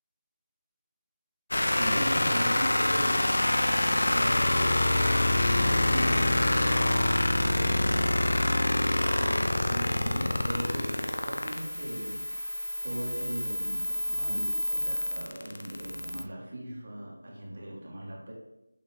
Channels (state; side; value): inverted; both; correlation -0.98